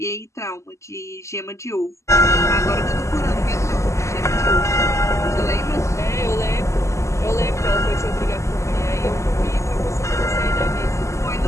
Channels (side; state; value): right; late; 0.14 ms